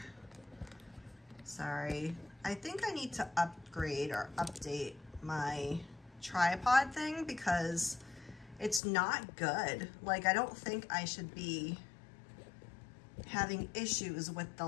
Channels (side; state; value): right; drops out; at 8.8 s